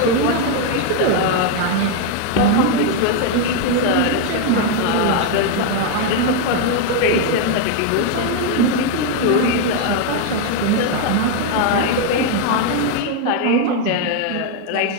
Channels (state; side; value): different; both; correlation 0.01